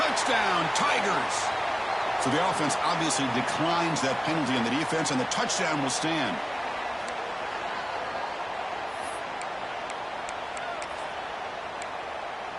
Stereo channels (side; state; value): both; identical; correlation 1.00